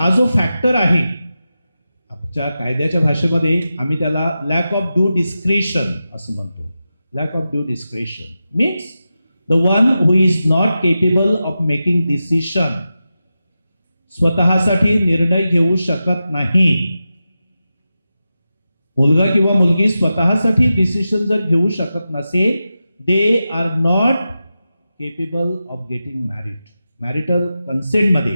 जो फॅक्टर आहे आमच्या कायद्याच्या भाषेमध्ये आम्ही त्याला लॅक ऑफ ड्यू डिस्क्रिशन असं म्हणतो. Lack of due discretion means the one who is not capable of making decision, स्वतःसाठी निर्णय घेऊ शकत नाही. मुलगा किंवा मुलगी स्वतःसाठी डिसिशन जर घेऊ शकत नसेल, they are not capable of getting married. Marital कन्सेंटमध्ये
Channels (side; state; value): both; inverted; correlation -0.92